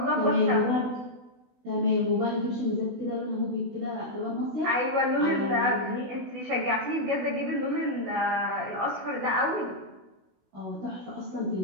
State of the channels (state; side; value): late; left; 16 ms